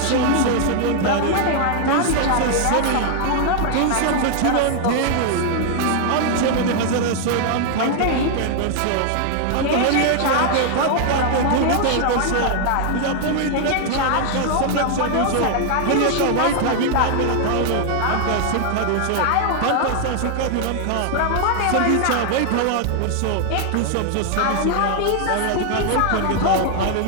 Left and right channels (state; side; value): different; both; correlation 0.00